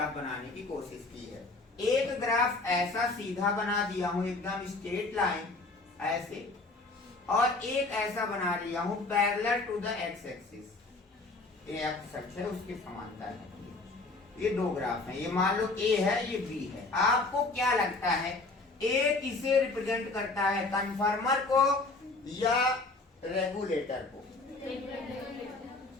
बनाने की कोशिश की है, एक ग्राफ ऐसा सीधा बना दिया हूं एकदम स्ट्रेट लाइन ऐसे, और एक ऐसा बना लिया हूं parallel to the x axis, ये एक्स एक्सिस है उसके समांतर है। ये दो ग्राफ हैं, ये मान लो ए है ये बी है। आपको क्या लगता है ए किसे रिप्रेजेंट करता है, कन्फर्मर को या रेगुलेटर को?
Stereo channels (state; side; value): quieter; right; 3.4 dB